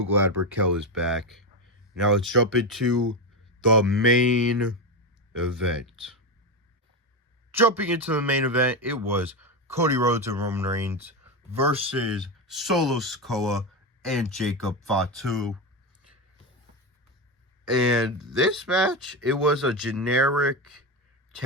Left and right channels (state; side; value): normal; both; correlation 0.14